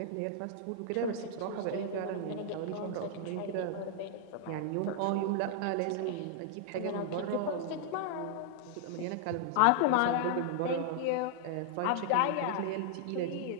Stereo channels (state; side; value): different; both; correlation -0.01